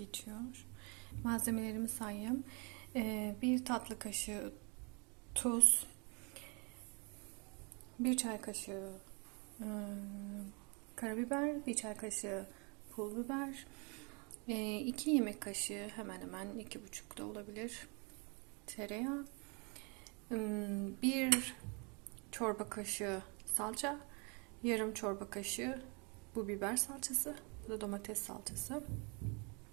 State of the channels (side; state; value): left; quieter; 32.9 dB